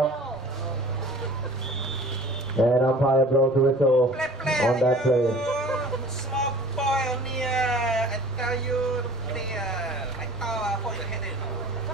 And umpire blows the whistle on that play. Small boy on here. I tell you, player. I thought for your head in.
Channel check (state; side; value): normal; both; correlation 0.45